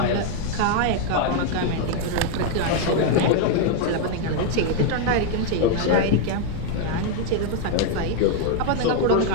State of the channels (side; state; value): both; different; correlation 0.01